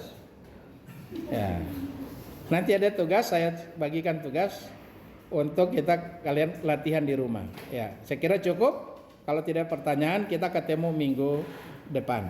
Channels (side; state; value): both; identical; correlation 1.00